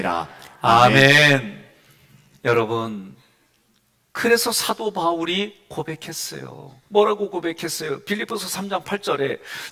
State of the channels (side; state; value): both; identical; correlation 1.00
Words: 아멘. 여러분, 그래서 사도 바울이 고백했어요. 뭐라고 고백했어요? 빌립보서 3장 8절에